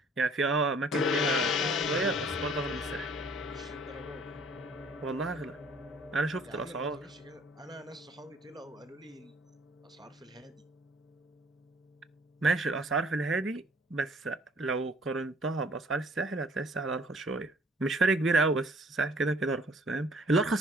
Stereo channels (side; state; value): both; normal; correlation 0.57